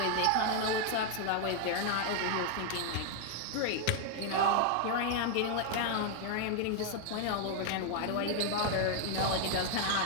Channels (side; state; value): both; different; correlation 0.00